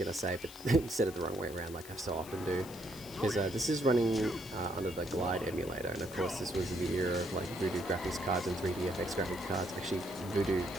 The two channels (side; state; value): left; noise; hiss, 16 dB below the sound